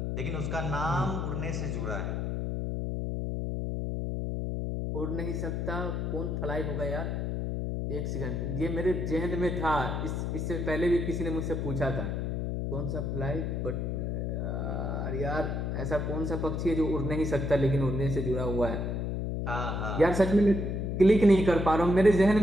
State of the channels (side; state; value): left; noise; hum, 1 dB below the sound